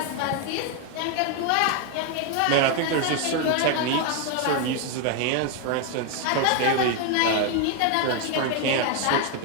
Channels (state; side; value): different; both; correlation 0.01